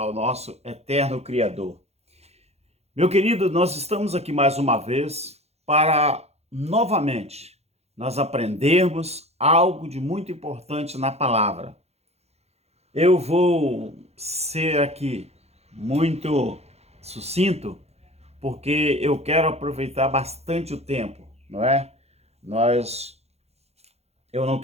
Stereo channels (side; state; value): left; late; 0.31 ms